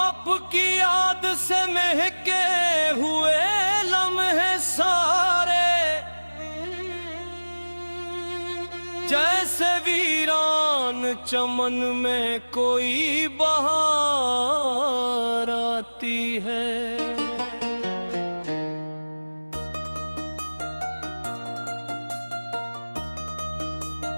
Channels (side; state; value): both; inverted; correlation -1.00